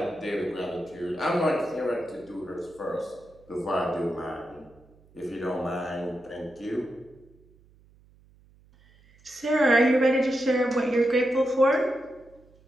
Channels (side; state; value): right; noise; hum, 29 dB below the sound